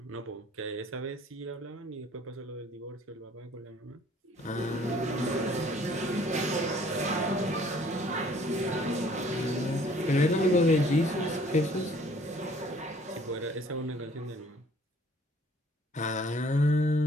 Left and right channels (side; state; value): both; normal; correlation 0.57